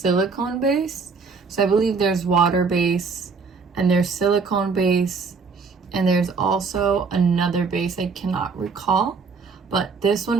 base. So I believe there's water base and there's silicone base and there's also another base I cannot recall. But this one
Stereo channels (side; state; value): left; quieter; 5.0 dB